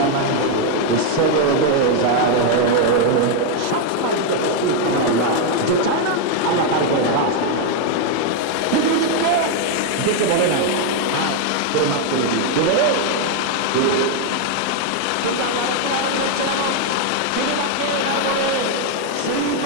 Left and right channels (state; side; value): different; both; correlation 0.01